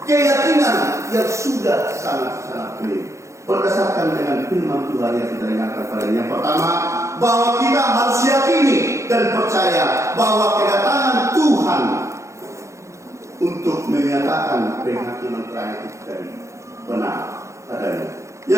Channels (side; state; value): left; late; 0.14 ms